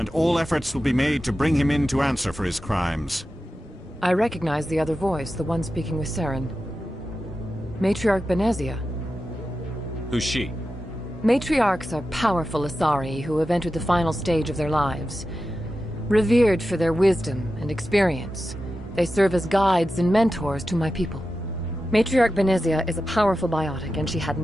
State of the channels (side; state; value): both; normal; correlation 0.92